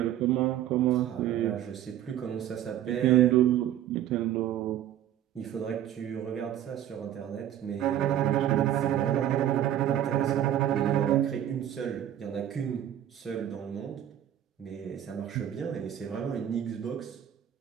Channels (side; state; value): left; quieter; 11.3 dB